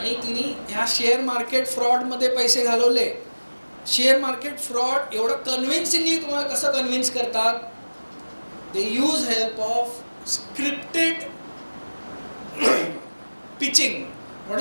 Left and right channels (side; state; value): both; inverted; correlation -1.00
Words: तिने ह्या शेअर मार्केट फ्रॉडमध्ये पैसे घालवले. शेअर मार्केट फ्रॉड एवढं कन्व्हिन्सिंगली तुम्हाला कसं कन्व्हिन्स करतात? They use help of scripted pitching. What